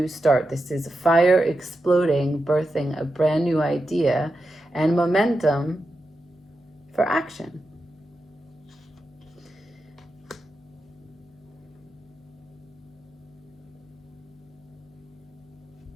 start. This is fire exploding, birthing a brand new idea and momentum for action.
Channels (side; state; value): both; normal; correlation 0.89